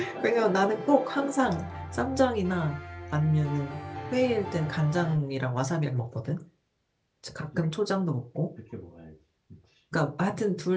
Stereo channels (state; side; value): identical; both; correlation 1.00